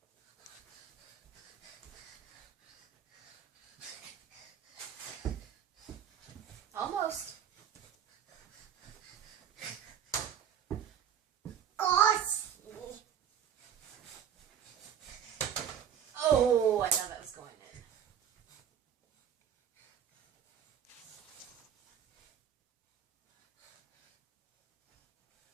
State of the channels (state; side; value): quieter; left; 8.9 dB